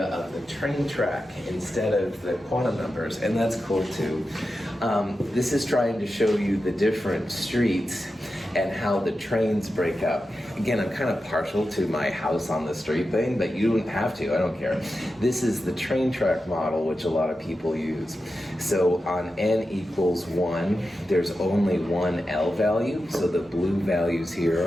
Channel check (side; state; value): both; normal; correlation 0.91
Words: of the train track instead of the quantum numbers, and that's cool too. This is trying to show you the different streets and how the trains break up. Again, I'm kind of partial to my house on the street thing, but you don't have to, I don't care. This is the train track model, which a lot of people use. So on n equals 1, there's only one L value, so the blue values